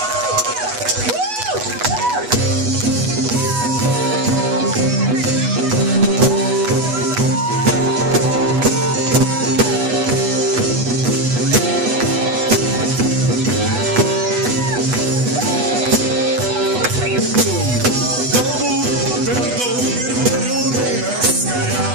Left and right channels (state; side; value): late; left; 8.1 ms